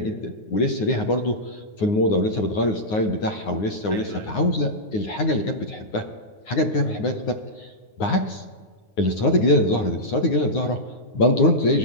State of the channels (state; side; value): late; right; 9.6 ms